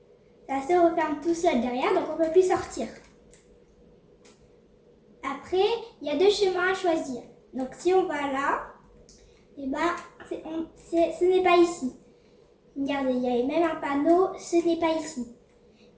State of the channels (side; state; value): both; identical; correlation 1.00